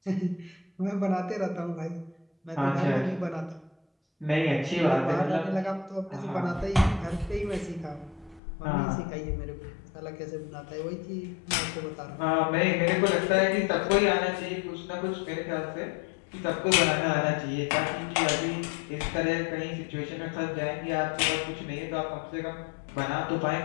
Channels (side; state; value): right; drops out; at 8.4 s